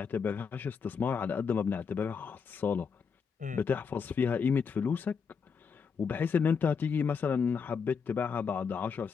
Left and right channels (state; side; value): quieter; right; 6.0 dB